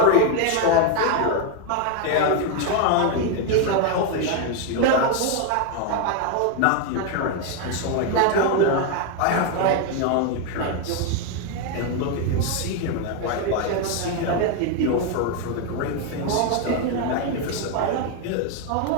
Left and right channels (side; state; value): both; different; correlation 0.01